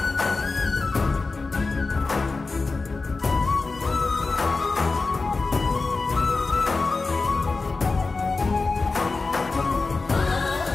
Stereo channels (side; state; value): right; quieter; 3.9 dB